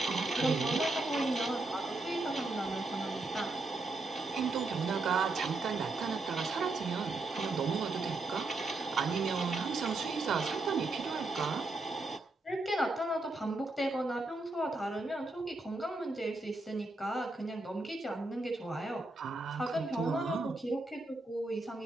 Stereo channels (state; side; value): quieter; left; 3.1 dB